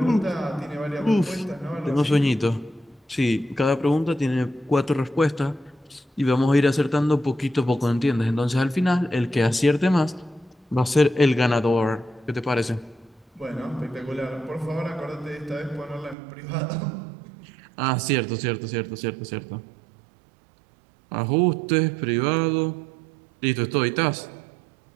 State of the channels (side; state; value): left; drops out; at 16.2 s